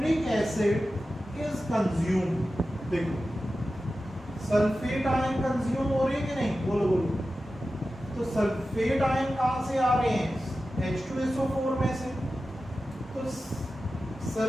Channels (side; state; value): both; normal; correlation 0.93